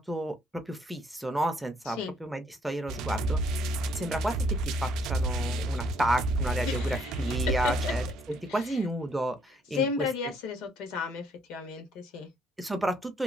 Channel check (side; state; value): both; normal; correlation 0.67